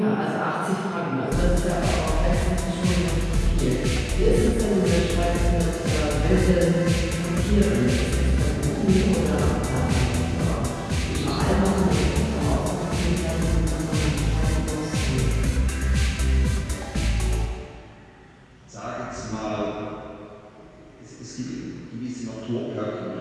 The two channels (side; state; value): both; identical; correlation 1.00